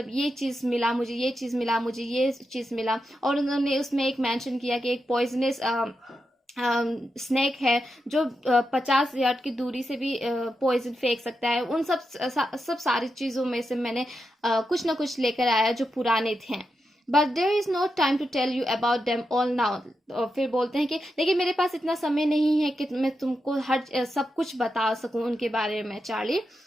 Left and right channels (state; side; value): normal; both; correlation 0.87